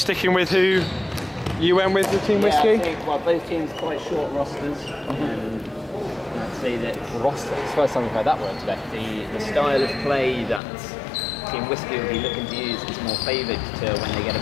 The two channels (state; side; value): drops out; right; at 10.6 s